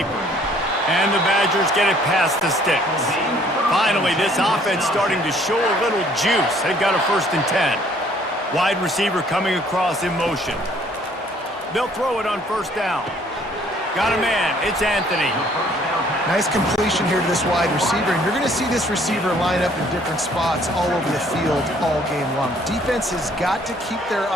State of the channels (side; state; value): both; normal; correlation 0.60